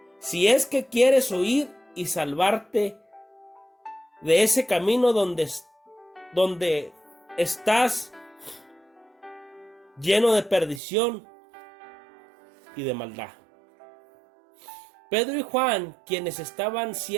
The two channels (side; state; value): left; drops out; at 10.8 s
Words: si es que quieres oír y salvarte de ese camino donde estás lleno de perdición y de maldad. Pedro y Juan, quienes estaban